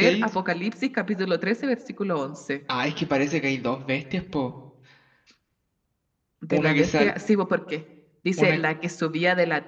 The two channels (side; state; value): both; identical; correlation 1.00